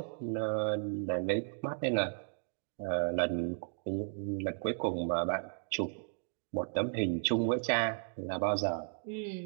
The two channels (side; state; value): left; silent; digital silence